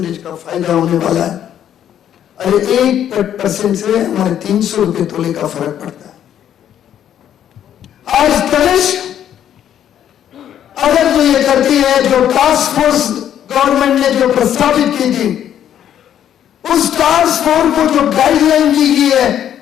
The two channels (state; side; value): quieter; right; 10.2 dB